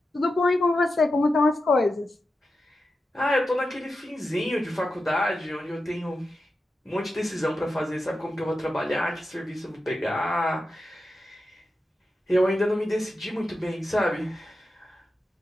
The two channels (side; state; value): both; normal; correlation 0.90